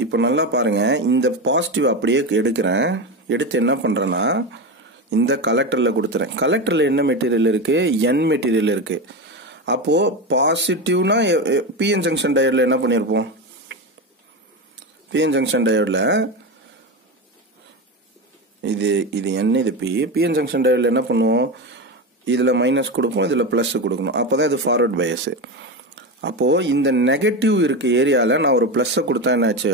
இப்போ நல்லா பாருங்க, இந்த பாசிட்டிவ் அப்படியே எடுக்கிறேன். எடுத்து என்ன பண்றேன்னா, இந்த கலெக்டர்ல கொடுத்துறேன். கலெக்டர்ல என்ன மெட்டீரியல் இருக்கு? N மெட்டீரியல் இருக்கு. அப்போ பாசிட்டிவ்னா பிஎன் ஜங்ஷன் டயோட்ல என்ன பண்ணிருப்போம்? பிஎன் ஜங்ஷன் டயோட்ல இது N, இது பிஎன் ஜங்ஷன் டயோட்ல என்ன பண்ணுவோம்? இதுல மைனஸ் கொடுப்போம், இதுல பிளஸ் கொடுக்கணும். அப்பதான் இது ஃபார்வர்ட் பயஸ். அப்போ இந்த நெகட்டிவ் இருக்க ஏரியால நான் ஒரு பிளஸ் கொடுத்தா என்ன ஆச்சு?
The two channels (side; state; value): both; normal; correlation 0.18